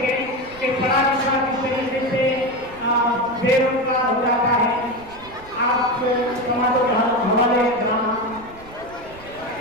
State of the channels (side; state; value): right; noise; rumble, 20 dB below the sound